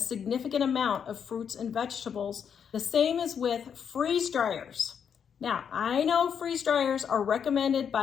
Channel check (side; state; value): right; quieter; 7.6 dB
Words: amount of fruits and vegetables. The same is with freeze dryers. Now, I know freeze dryers are recommended